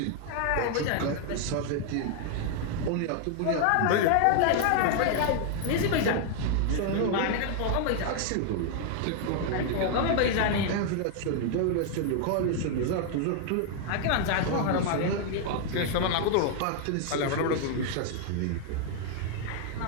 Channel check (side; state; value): both; different; correlation 0.00